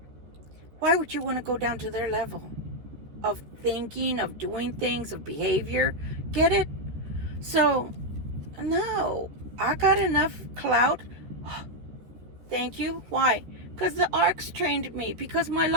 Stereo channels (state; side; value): late; left; 13 ms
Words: why would you want to go down to their level of thinking, of doing things, of behavior? Get it? So, no, I got enough clout. Thank you. Why? Because the arcs trained me, because my